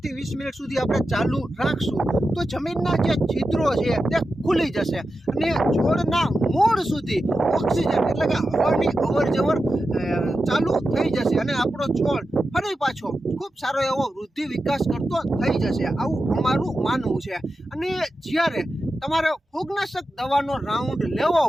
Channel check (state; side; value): normal; both; correlation 0.91